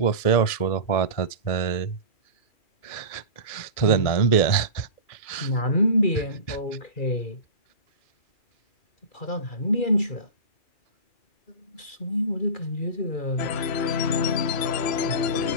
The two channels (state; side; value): late; right; 2.4 ms